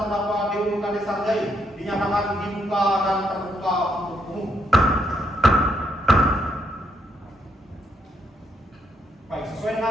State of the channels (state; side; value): normal; both; correlation 0.76